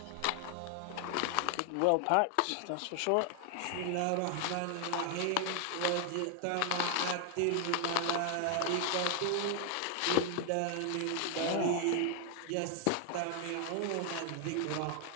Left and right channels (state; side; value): different; both; correlation 0.00